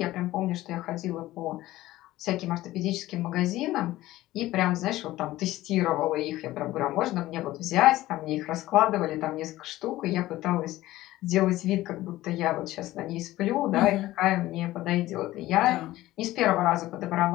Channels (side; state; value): right; quieter; 16.3 dB